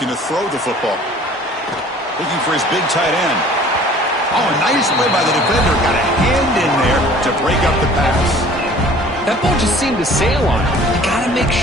to throw the football. Looking for his big tight end. Oh, a nice play by the defender. Got a hand in there to break up the pass. That ball just seemed to sail on him. You got to make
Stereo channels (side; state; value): both; normal; correlation 0.50